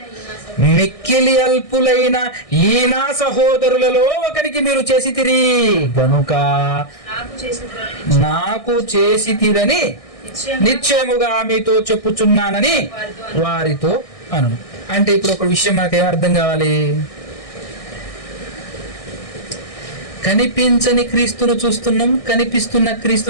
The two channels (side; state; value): right; late; 1.6 ms